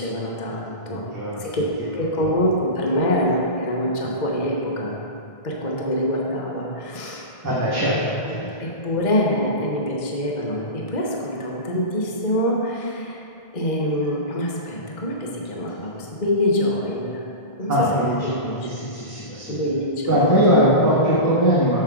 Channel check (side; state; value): right; late; 1.6 ms